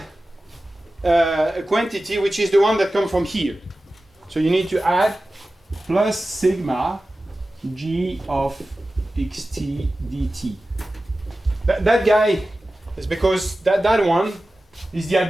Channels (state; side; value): normal; both; correlation 0.95